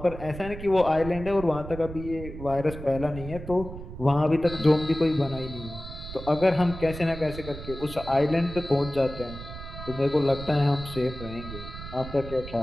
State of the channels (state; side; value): noise; right; rumble, 11 dB below the sound